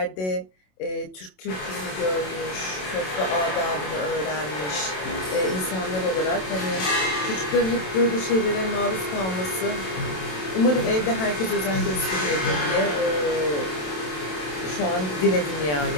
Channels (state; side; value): late; right; 27 ms